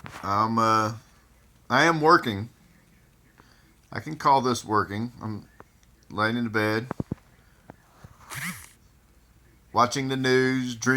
I am working. I can call this working. I'm laying in the bed, watching the news,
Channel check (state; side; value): identical; both; correlation 1.00